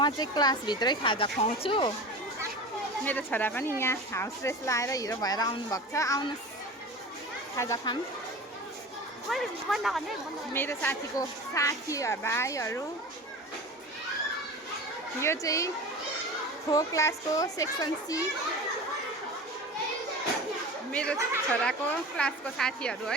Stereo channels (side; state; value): both; normal; correlation 0.33